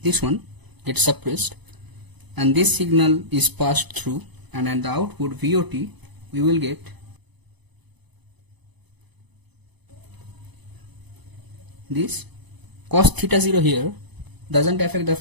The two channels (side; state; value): left; late; 0.99 ms